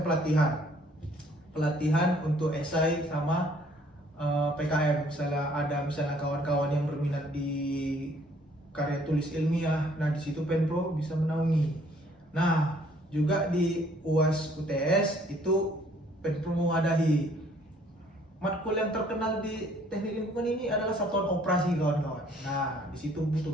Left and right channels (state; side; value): normal; both; correlation 0.61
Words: pelatihan untuk esai sama PKM. Misalnya kawan-kawan yang berminat di karya tulis ilmiah, nah di situ Penpro bisa menaungi. Nah, juga di UAS UTS itu Penpro mewadahi. Matkul yang terkenal di teknik lingkungan ini adalah satuan operasi, kawan-kawan. Nah, di situ butuh